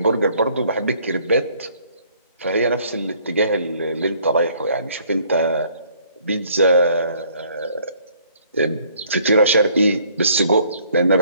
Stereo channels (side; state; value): both; inverted; correlation -0.61